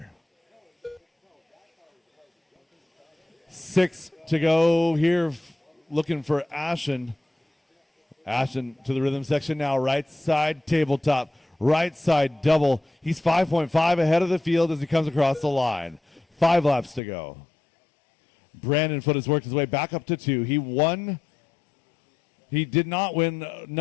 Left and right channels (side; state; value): right; drops out; at 17.0 s